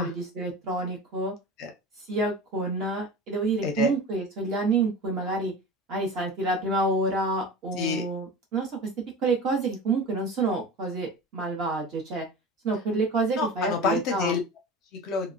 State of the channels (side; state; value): both; normal; correlation 0.32